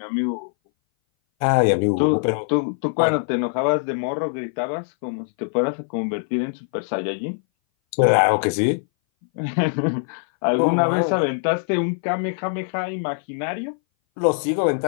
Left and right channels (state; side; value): silent; right; 60 dB below the other